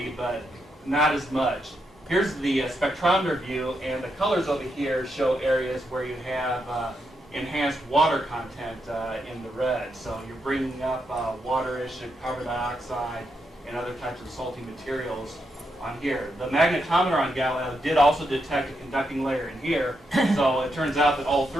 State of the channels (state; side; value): normal; both; correlation 0.82